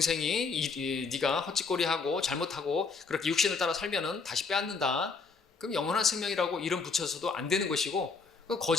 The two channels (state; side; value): quieter; right; 4.7 dB